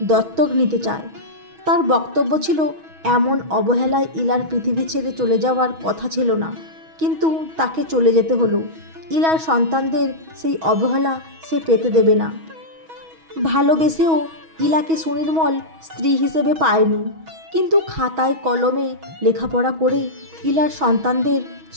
দত্তক নিতে চায়। তার বক্তব্য ছিল এমন অবহেলায় ইলার পৃথিবী ছেড়ে চলে যাওয়ার কথা ছিল না, কিন্তু তাকে চলে যেতে হলো। ইলার সন্তানদের সেই অবহেলা সে পেতে দেবে না। ভালোবেসেও ইলাকে সুনির্মল স্ত্রী হিসেবে পায়নি, কিন্তু খাতায় কলমে লেখাপড়া করে ইলার সন্তানদের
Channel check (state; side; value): late; left; 6.2 ms